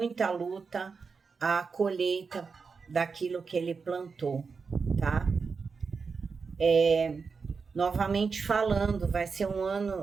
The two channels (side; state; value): left; quieter; 5.1 dB